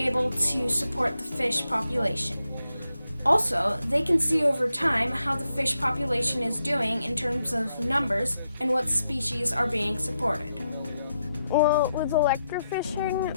to support the fish population. Also, they can see over time how the fish population is doing in terms of numbers and what species are being supported. Well, with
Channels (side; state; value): both; inverted; correlation -0.84